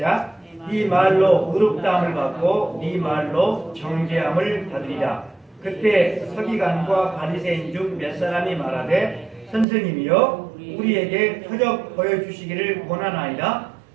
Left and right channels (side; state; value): left; drops out; at 9.7 s